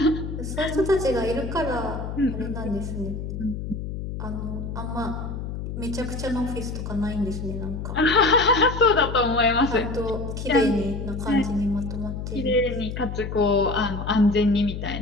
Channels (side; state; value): left; noise; hum, 6 dB below the sound